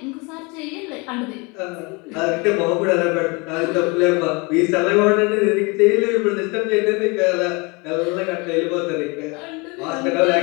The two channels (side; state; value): right; quieter; 28.4 dB